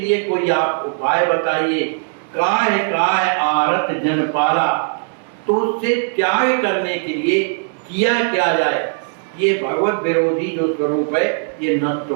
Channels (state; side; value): silent; left; digital silence